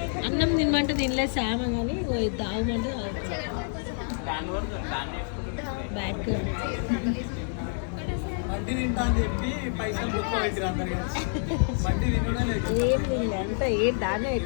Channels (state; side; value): silent; right; 58 dB below the other